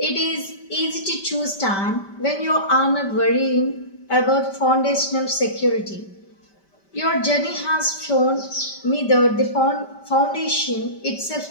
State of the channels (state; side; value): late; right; 5.1 ms